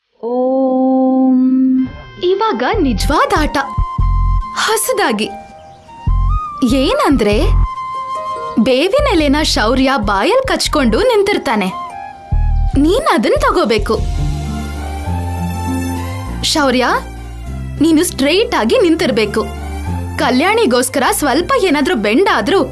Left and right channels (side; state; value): both; identical; correlation 1.00